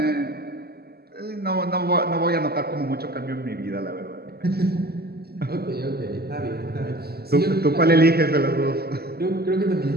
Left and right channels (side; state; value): left; late; 0.46 ms